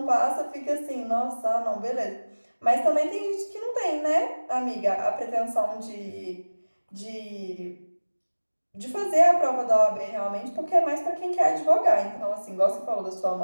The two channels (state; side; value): inverted; both; correlation -1.00